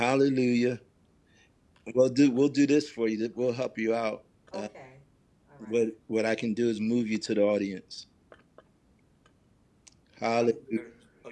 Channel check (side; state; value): both; identical; correlation 1.00